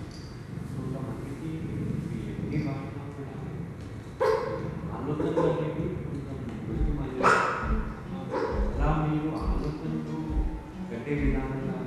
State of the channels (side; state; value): both; identical; correlation 1.00